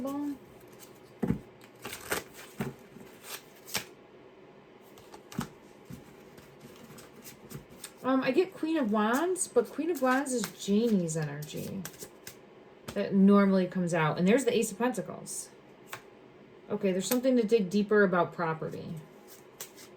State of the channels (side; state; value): both; identical; correlation 1.00